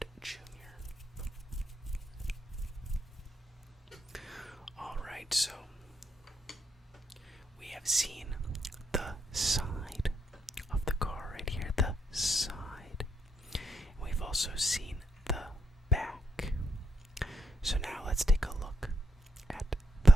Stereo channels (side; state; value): both; normal; correlation 0.80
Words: Jr. Alright, so we have seen the side of the car right here, the side. We've also seen the back. So now let's take a look at